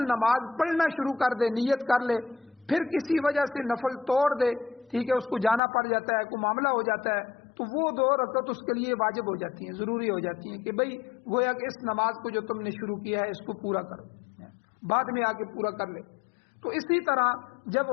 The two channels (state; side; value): drops out; right; at 5.6 s